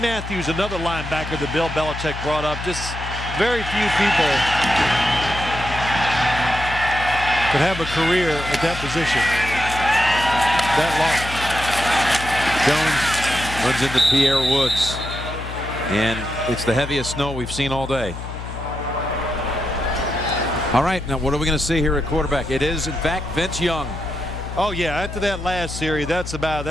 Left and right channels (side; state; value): left; noise; hum, 9 dB below the sound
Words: Matthews, another linebacker that Bill Belichick brought up. Just very few people could have a career at that position that long. Jones runs into Pierre Woods, and it's the heaviest snow we've seen all day. All right, now what are we going to see here at quarterback? It is, in fact, Vince Young. Oh, yeah, after that last series,